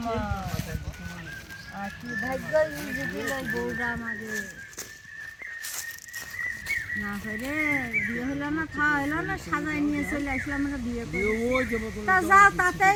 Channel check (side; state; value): both; identical; correlation 1.00